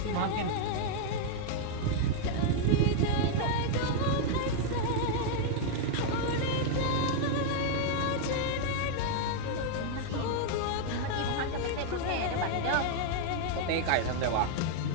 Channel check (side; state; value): both; different; correlation -0.01